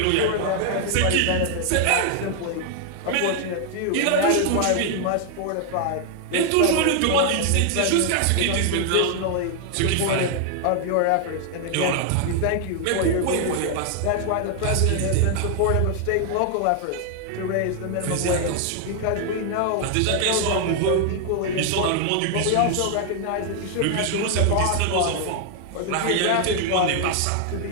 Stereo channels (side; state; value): both; different; correlation 0.00